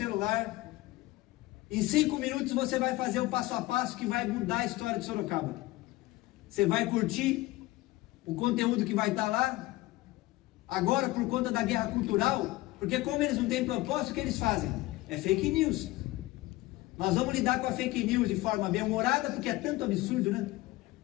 Em 5 minutos você vai fazer o passo a passo que vai mudar a história de Sorocaba. Você vai curtir o conteúdo que vai estar lá. Agora, por conta da guerra cultural, porque como eles não têm propósito, o que eles fazem? É fake news. Nós vamos lidar com a fake news de forma bem-humorada, porque é tanto absurdo, né?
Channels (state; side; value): quieter; right; 18.8 dB